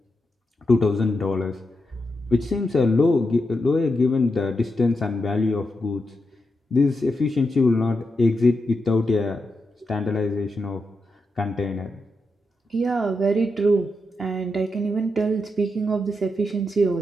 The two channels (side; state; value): both; normal; correlation 0.86